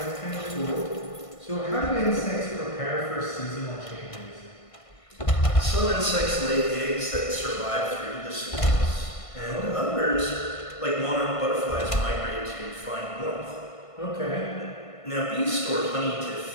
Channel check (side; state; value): right; late; 1.5 ms